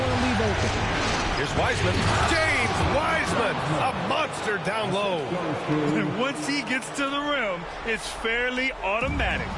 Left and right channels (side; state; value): both; identical; correlation 1.00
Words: to leave open. Here's Wiseman. James Wiseman, a monster down low. And once he gets to the rim, it's fairly automatic.